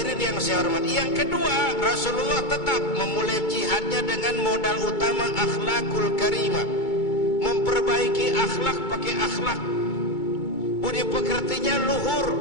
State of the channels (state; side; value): late; right; 2.2 ms